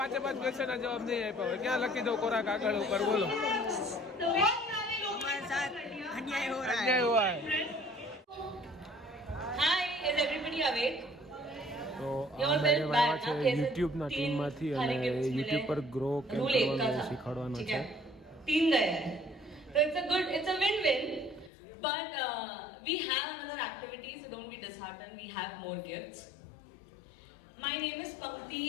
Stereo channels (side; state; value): right; drops out; at 21.5 s